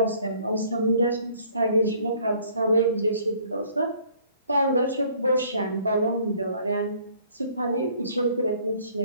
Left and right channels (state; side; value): inverted; both; correlation -0.58